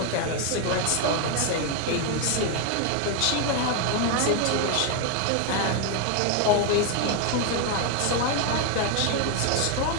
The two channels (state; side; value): different; both; correlation 0.01